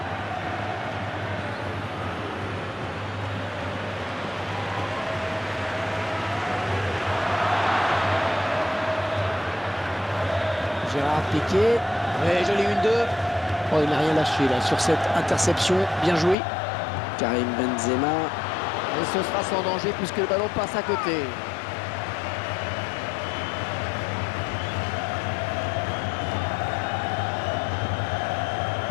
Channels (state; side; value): drops out; right; at 16.4 s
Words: Gérard Piqué. Ouais, joli 1-2. Oh, il n'a rien lâché là sur cette interception. Bien joué. Karim Benzema. Et ce sera sans danger puisque le ballon passe à côté.